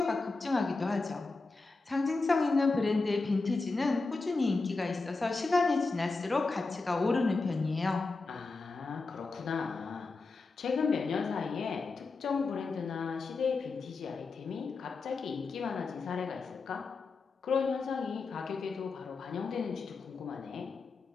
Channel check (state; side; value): quieter; right; 3.9 dB